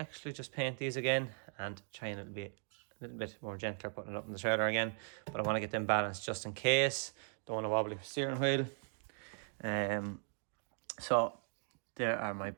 just paint these again and try and be a little bit more gentler putting it up in the trailer again. But I want to get them balanced just in case. Don't want a wobbly steering wheel. So there are my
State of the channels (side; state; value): left; silent; 52 dB below the other